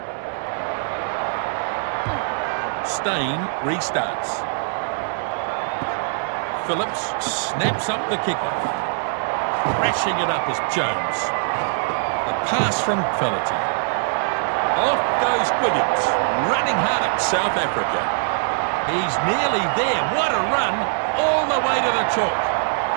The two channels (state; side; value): silent; left; digital silence